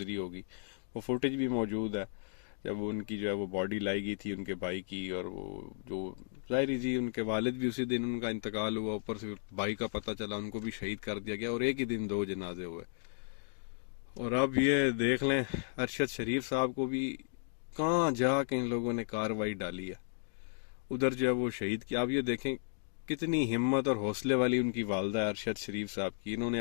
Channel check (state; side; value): silent; right; digital silence